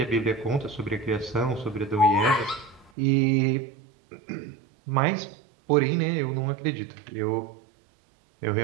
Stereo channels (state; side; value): drops out; left; at 2.9 s